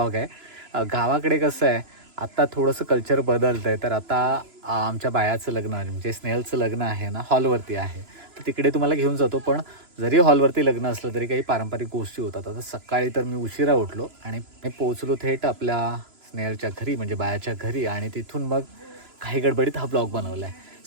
आहे. गावाकडे कसं आहे, आत्ता थोडंसं कल्चर बदलतं आहे. तर आता आमच्या बायाचं लग्न म्हणजे स्नेहलचं लग्न आहे ना, हॉलवरती आहे. तर तिकडे तुम्हाला घेऊन जातो. पण जरी हॉलवरती लग्न असलं तरी काही पारंपरिक गोष्टी होतात. आता सकाळी तर मी उशिरा उठलो आणि मी पोहोचलो थेट आपल्या स्नेहलच्या घरी म्हणजे बायाच्या घरी, आणि तिथून मग काही गडबडीत हा ब्लॉग बनवला आहे.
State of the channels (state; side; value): late; left; 3.0 ms